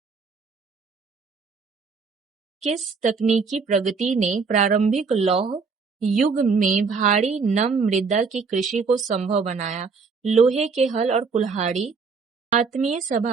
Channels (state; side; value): quieter; left; 5.0 dB